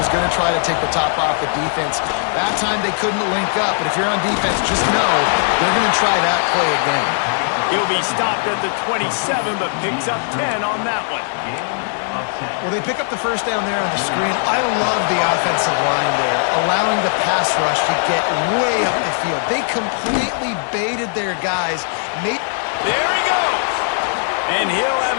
going to try to take the top off the defense. That time they couldn't link up, but if you're on defense, just know they're going to try that play again. He'll be stopped at the 27, but picks up 10 on that one. Well, they pick up the first down there on the screen. I love the offensive line there, allowing the pass rush to get way up the field. They completely baited their guys. There he goes. And he'll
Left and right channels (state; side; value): silent; right; 67 dB below the other